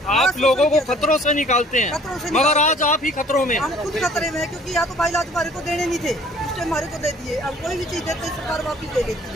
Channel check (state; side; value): normal; both; correlation 0.54